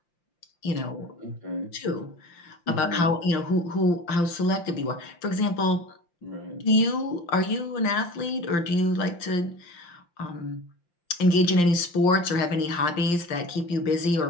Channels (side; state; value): right; late; 5.8 ms